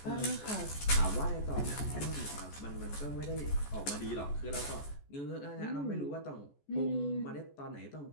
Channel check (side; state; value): right; late; 14 ms